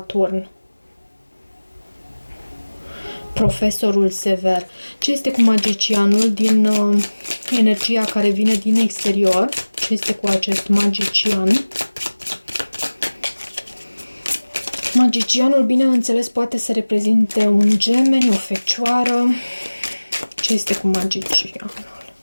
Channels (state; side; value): inverted; both; correlation -1.00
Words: Profesorul sever. Ce este cu magicianul din energia care vine din exterior? Ce este cu acest magician? Magicianul, bineînțeles, poate să reprezinte un gemeni, o fecioară. Ce este cu magicianul?